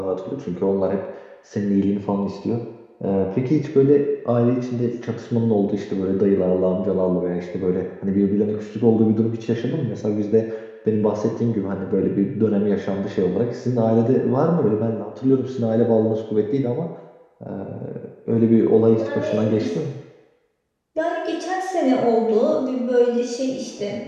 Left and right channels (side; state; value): both; identical; correlation 1.00